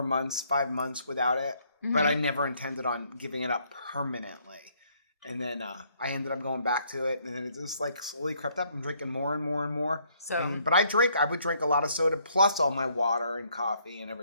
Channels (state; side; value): inverted; both; correlation -0.68